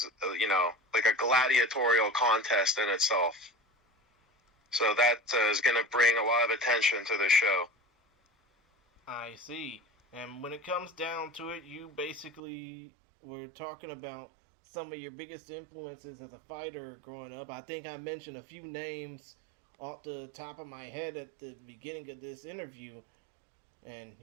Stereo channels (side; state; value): left; drops out; at 12.4 s